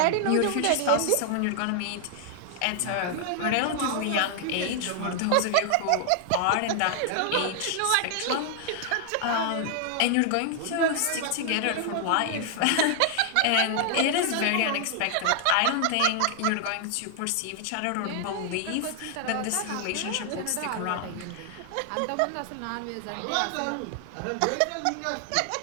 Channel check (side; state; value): both; different; correlation 0.00